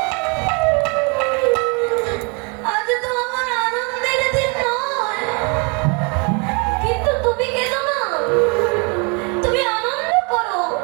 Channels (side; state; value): left; quieter; 33.2 dB